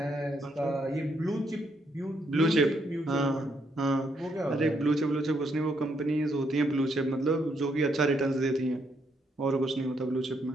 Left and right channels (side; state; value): both; normal; correlation 0.75